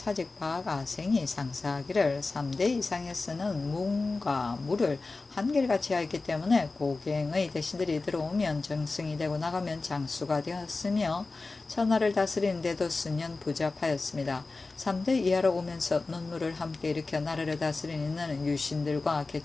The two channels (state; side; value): quieter; right; 3.6 dB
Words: 박아생이 상사하기를 3대 이상에 쓰는 문과 무를 한결같이 하였기 때문에 고갱의 대신들이 들어오면 정승이 되고 나가면 장수가 되었으며 천하를 다스리는 데도 수년 부잡하였습니다. 3대 이하로 오면서 논무를 함께 일으켜 나라를 다스리는 유신들과